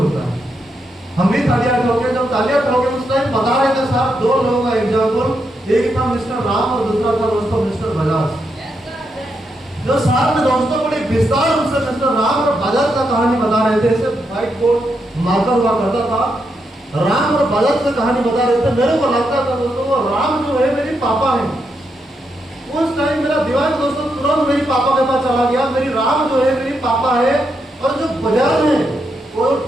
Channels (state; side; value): normal; both; correlation 0.82